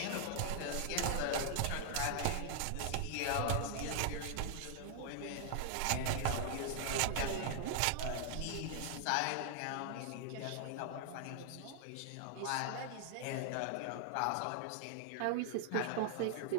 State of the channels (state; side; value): different; both; correlation 0.00